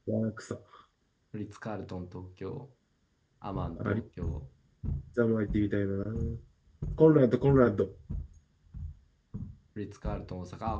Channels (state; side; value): identical; both; correlation 1.00